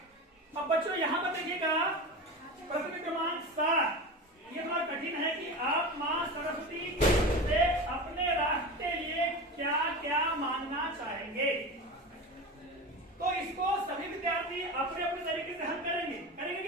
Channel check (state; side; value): normal; both; correlation 0.27